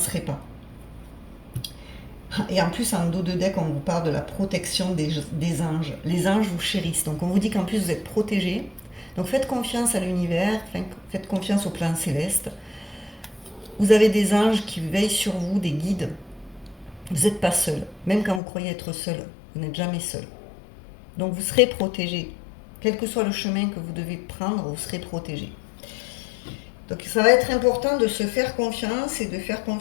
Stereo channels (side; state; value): right; drops out; at 18.4 s